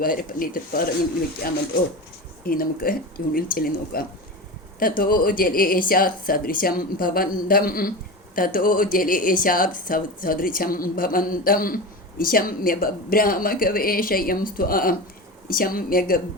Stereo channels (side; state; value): both; normal; correlation 0.26